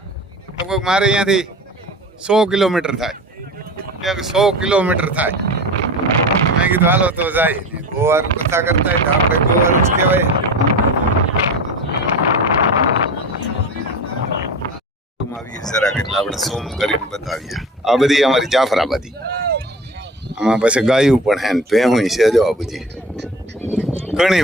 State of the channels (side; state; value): both; normal; correlation 0.34